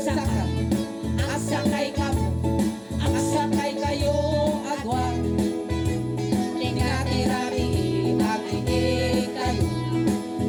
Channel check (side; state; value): both; identical; correlation 1.00